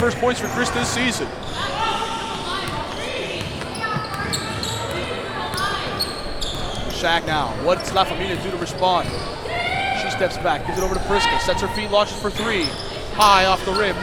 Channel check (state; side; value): identical; both; correlation 1.00